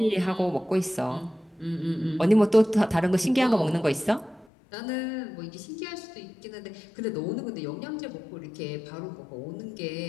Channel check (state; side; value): drops out; right; at 4.5 s